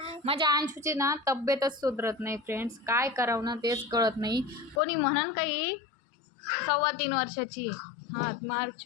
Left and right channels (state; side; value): drops out; right; at 4.8 s